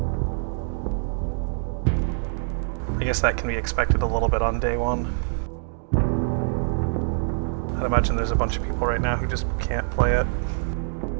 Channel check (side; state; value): left; silent; digital silence